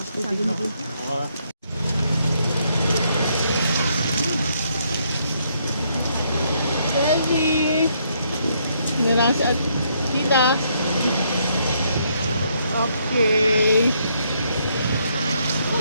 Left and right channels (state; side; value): inverted; both; correlation -0.73